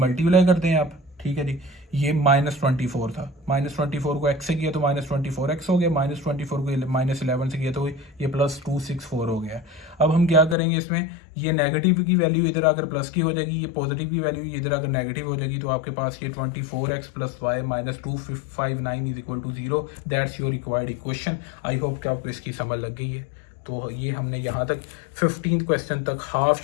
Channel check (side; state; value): right; drops out; at 10.6 s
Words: करते हैं आप, ठीक है जी। ये -24 था, -24 को x से किया तो -24x हो गया, -24 को -11 से किया तो ये +264 हो गया। अब हम क्या करेंगे इसमें, ये नेगेटिव की वैल्यू इधर आकर प्लस की हो जाएगी, ये पॉजिटिव की वैल्यू इधर आकर नेगेटिव हो जाएगी। तो आपके पास ये 24x + y - 259 is equal to 0। That's your required equation. I hope कि आपको इसकी समझ लग गई है। तो ये हमने यहाँ तक 15 क्वेश्चन तक हाफ